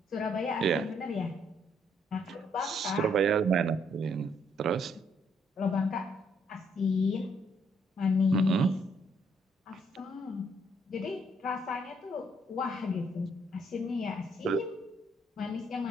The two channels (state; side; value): normal; both; correlation 0.70